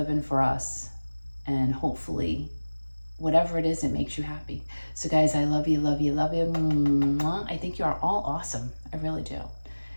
for us. And hopefully, whatever it is, it makes you happy. So guys, I love you, love you, love you. I think you are all awesome. I really do.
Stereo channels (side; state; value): both; inverted; correlation -1.00